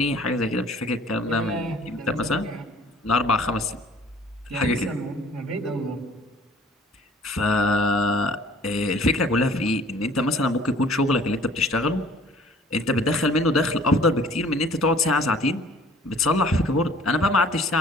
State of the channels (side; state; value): both; normal; correlation 0.52